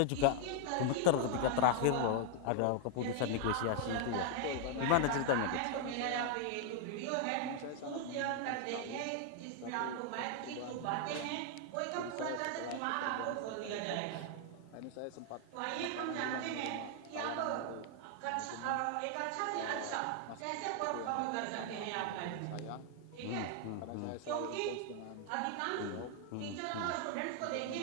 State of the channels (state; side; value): different; both; correlation 0.00